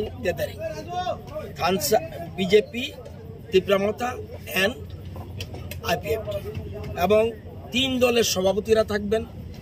gathering থানসা BJP Tipra Motha and IPFT এবং 3 দলের সভাপতিরা থাকবেন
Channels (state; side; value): identical; both; correlation 1.00